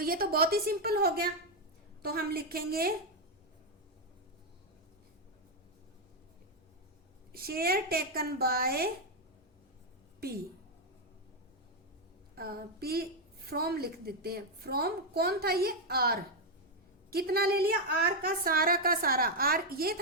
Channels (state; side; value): normal; both; correlation 0.01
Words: ये तो बहुत ही सिंपल हो गया, तो हम लिखेंगे share taken by P, P from लिख देते हैं, फ्रॉम कौन था ये? R, कितना ले लिया? R का सारा, R ये